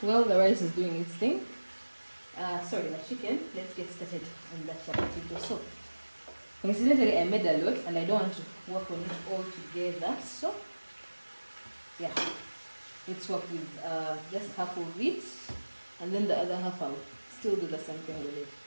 the rice is doing its thing, the chicken, let's get started on that chapati dough. So coincidentally, I made a lot and I don't want to work on it all together. So yeah, let's work with just half of it, and then the other half I'll still do the same thing with it.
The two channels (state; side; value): inverted; both; correlation -1.00